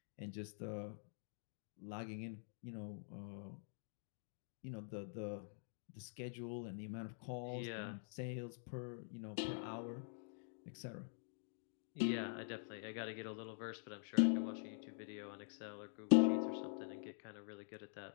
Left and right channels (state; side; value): silent; right; digital silence